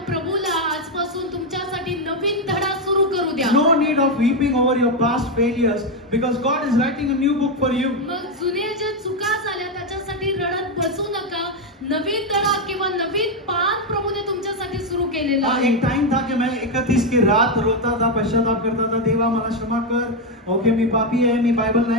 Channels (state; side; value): normal; both; correlation 0.05